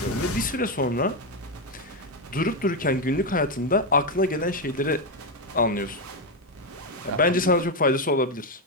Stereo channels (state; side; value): normal; both; correlation 0.06